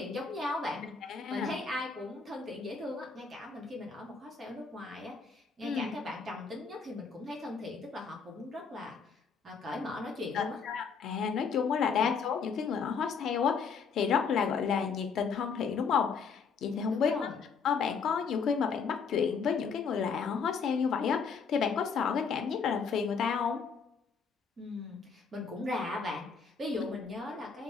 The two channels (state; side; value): quieter; right; 5.6 dB